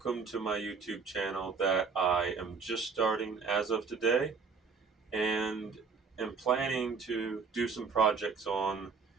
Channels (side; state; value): left; quieter; 5.2 dB